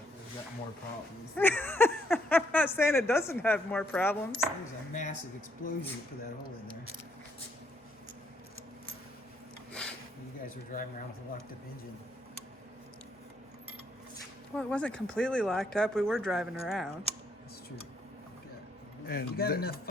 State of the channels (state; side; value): normal; both; correlation 0.71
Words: There's got more problems. I'm not saying it doesn't have more problems. There's a massive explosion that put that hole in there. You guys were driving around with a locked up engine. Well, it wasn't completely locked up. We were driving around. That's true. And You got enough fun